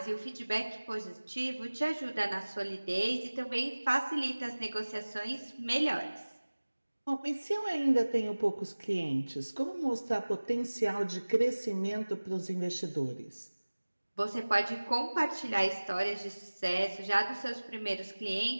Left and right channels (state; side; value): inverted; both; correlation -1.00